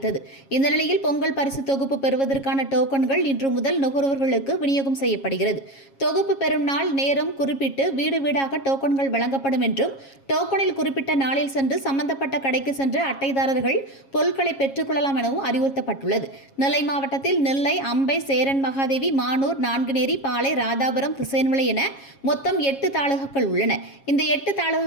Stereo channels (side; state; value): right; late; 7.3 ms